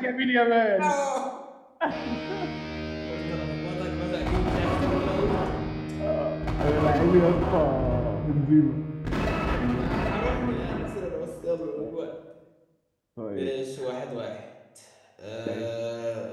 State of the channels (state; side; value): identical; both; correlation 1.00